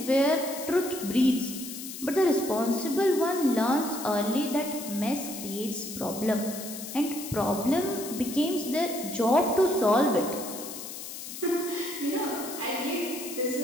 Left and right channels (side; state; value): left; noise; hiss, 10 dB below the sound